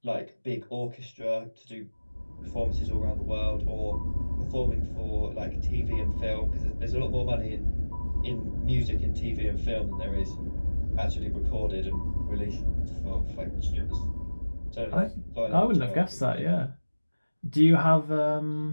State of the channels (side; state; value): both; inverted; correlation -1.00